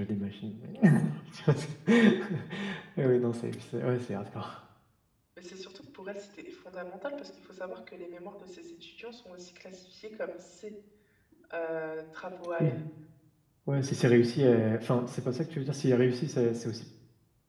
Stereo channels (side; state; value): both; identical; correlation 1.00